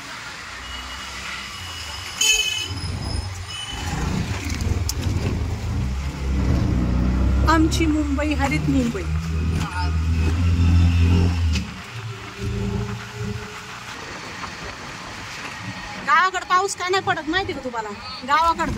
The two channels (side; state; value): both; identical; correlation 1.00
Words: आमची मुंबई हरित मुंबई. गावाकडे पाऊस का नाही पडत माहिती का तुम्हाला? गावाकडे